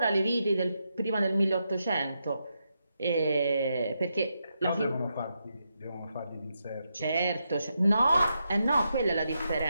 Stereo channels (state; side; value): inverted; both; correlation -0.84